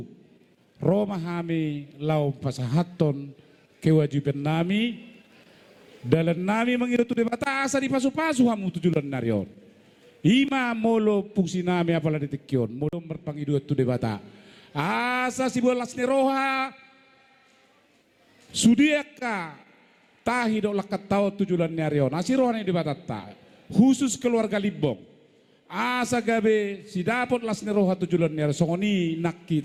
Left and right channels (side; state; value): both; identical; correlation 1.00